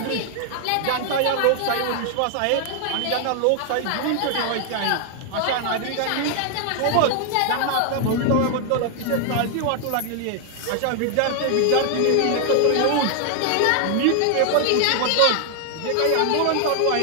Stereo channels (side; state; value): both; different; correlation 0.00